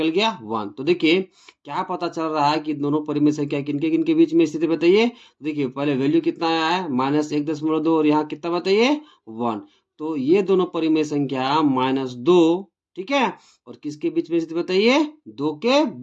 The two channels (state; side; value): identical; both; correlation 1.00